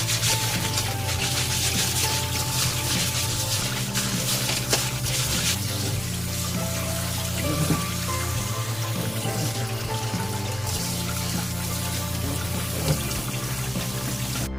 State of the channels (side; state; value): left; noise; rumble, 15 dB below the sound